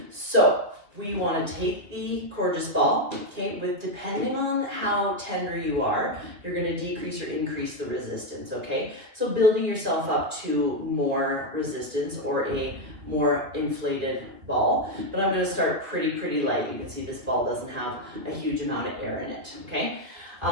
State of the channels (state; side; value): late; left; 2.3 ms